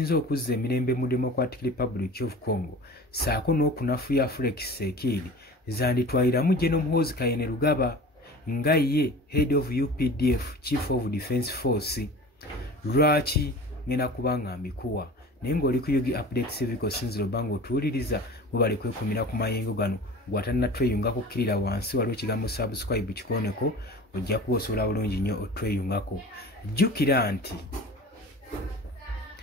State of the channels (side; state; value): both; normal; correlation 0.39